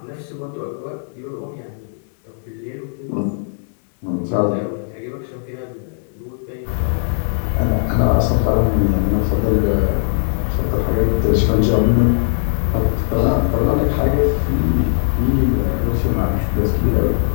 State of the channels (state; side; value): silent; right; digital silence